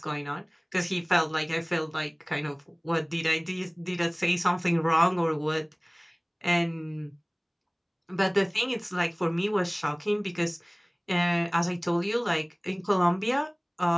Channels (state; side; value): identical; both; correlation 1.00